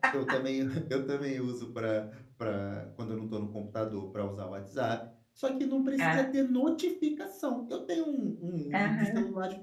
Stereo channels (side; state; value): both; identical; correlation 1.00